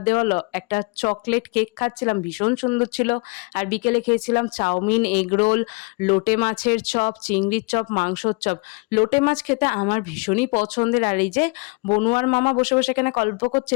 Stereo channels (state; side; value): quieter; right; 30.2 dB